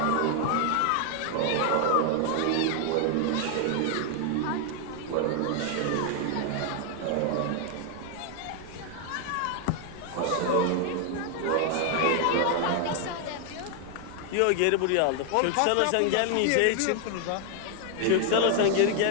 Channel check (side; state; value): both; different; correlation 0.00